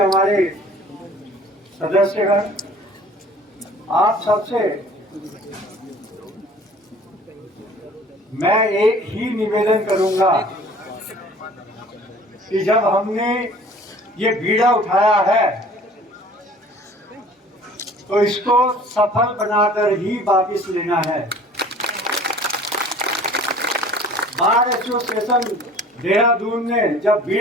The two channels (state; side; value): normal; both; correlation 0.49